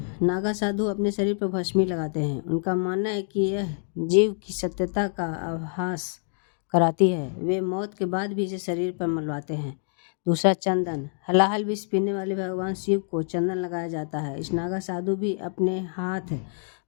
नागा साधु अपने शरीर पर भस्मी लगाते हैं। उनका मानना है कि यह जीव की सत्यता का आभास कराती है। वे मौत के बाद भी इसे शरीर पर मलवाते हैं। दूसरा, चंदन। हलाहल विष पीने वाले भगवान शिव को चंदन लगाया जाता है। इस नागा साधु भी अपने हाथ,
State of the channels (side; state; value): right; silent; 58 dB below the other